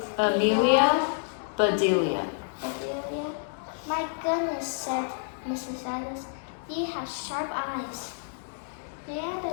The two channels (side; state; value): right; silent; digital silence